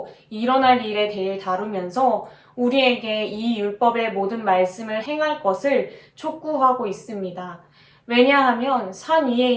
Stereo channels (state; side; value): identical; both; correlation 1.00